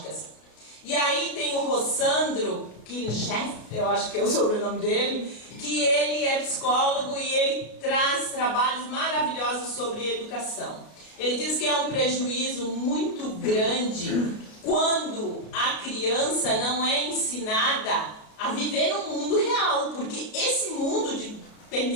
E aí tem o Rossandro Kincheff, eu acho que é o sobrenome dele, que ele é psicólogo e ele traz trabalhos maravilhosos sobre educação. Ele diz que é um prejuízo muito grande quando a criança não é ensinada a viver no mundo real, porque esse mundo de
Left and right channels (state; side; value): late; right; 32 ms